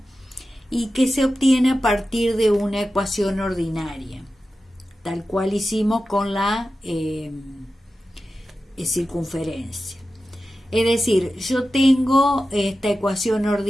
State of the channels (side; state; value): both; normal; correlation 0.93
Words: y que se obtiene a partir de una ecuación ordinaria, tal cual hicimos con la circunferencia. Es decir, yo tengo esta ecuación